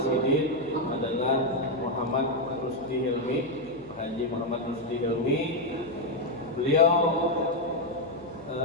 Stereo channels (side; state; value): left; noise; hum, 24 dB below the sound